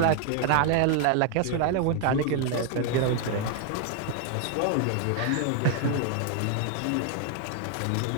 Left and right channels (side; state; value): both; different; correlation 0.00